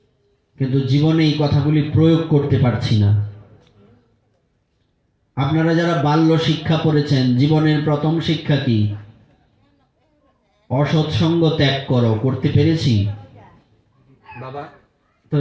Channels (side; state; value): both; identical; correlation 1.00